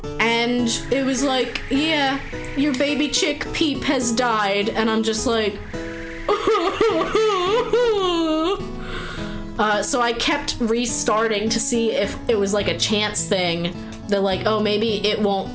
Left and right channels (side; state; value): both; identical; correlation 1.00